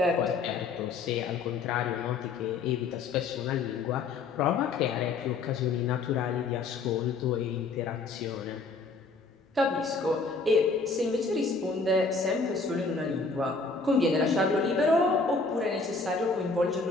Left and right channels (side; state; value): right; quieter; 4.1 dB